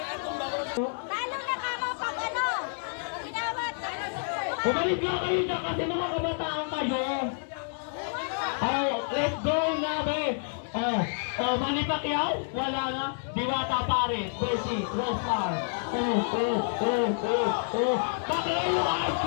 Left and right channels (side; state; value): right; silent; digital silence